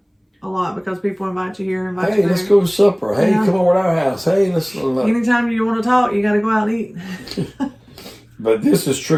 a lot because people invite you here, invite you there. Hey, let's go to supper. Hey, come over to our house. Hey, let's... Anytime you want to talk, you got to go out and eat. But this is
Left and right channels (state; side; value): identical; both; correlation 1.00